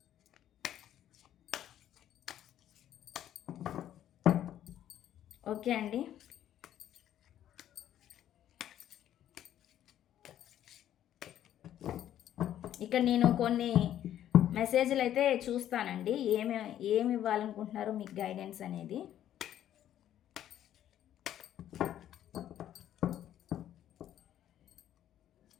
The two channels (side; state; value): right; quieter; 11.4 dB